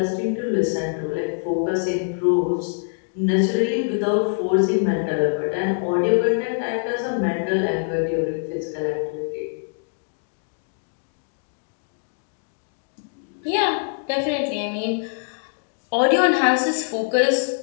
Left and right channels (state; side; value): silent; right; 61 dB below the other